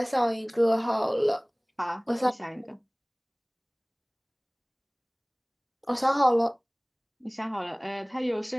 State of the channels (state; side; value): identical; both; correlation 1.00